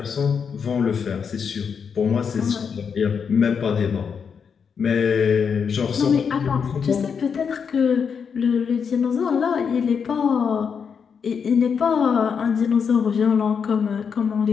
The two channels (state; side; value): quieter; right; 6.5 dB